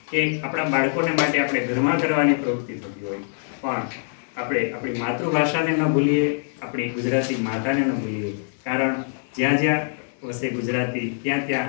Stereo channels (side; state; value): right; silent; digital silence